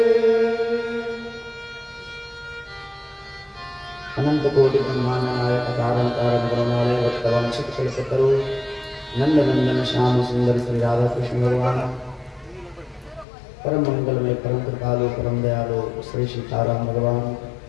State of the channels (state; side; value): drops out; right; at 13.2 s